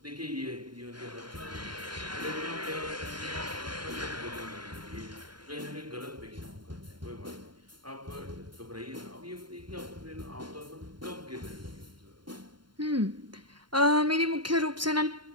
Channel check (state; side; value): late; left; 0.72 ms